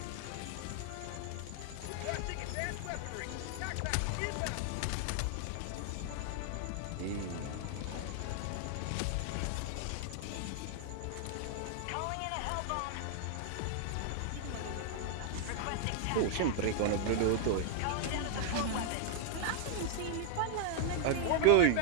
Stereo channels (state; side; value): different; both; correlation 0.00